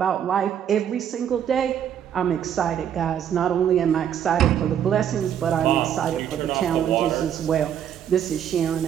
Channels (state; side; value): quieter; left; 9.4 dB